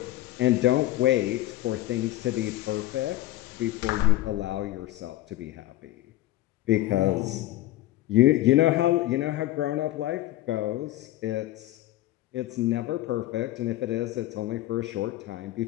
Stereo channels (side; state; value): right; quieter; 15.6 dB